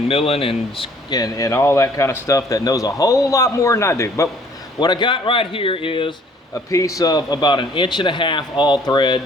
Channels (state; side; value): normal; both; correlation 0.58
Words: milling and all that kind of stuff that knows a whole lot more than I do. But what I got right here is a piece of about 1.5 inches all